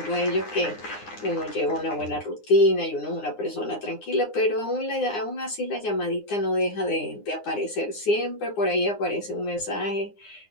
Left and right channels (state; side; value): late; right; 9.7 ms